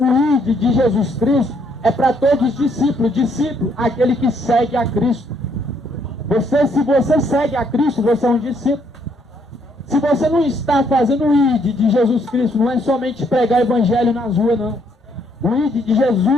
ID de Jesus Cristo, é para todos os discípulos. Discípulo, aquele que segue a Cristo. Se você segue a Cristo, você é um discípulo. Se você não está fazendo o ID de Jesus Cristo, não é somente pregar o Evangelho nas ruas, não. O ID de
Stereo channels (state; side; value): normal; both; correlation 0.70